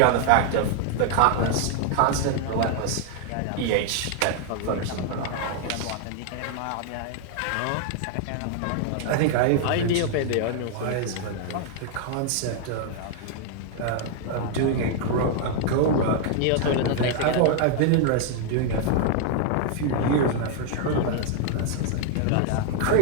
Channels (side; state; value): both; different; correlation 0.00